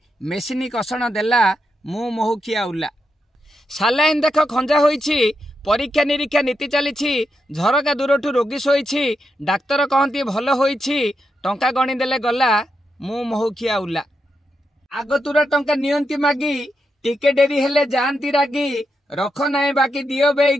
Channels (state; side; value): normal; both; correlation 0.84